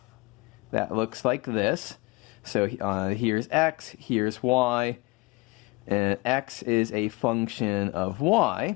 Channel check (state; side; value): quieter; right; 23.9 dB